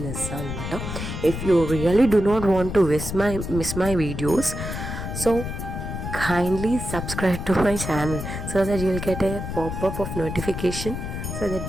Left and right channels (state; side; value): noise; left; rumble, 6 dB below the sound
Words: చేస్తాను అనమాట. If you really do not want to miss my videos, so kindly subscribe to my channel so that you will get a pop-up of notification, so that